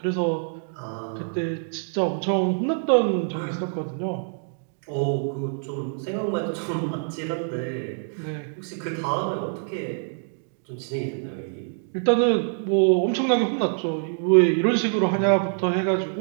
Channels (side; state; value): left; silent; digital silence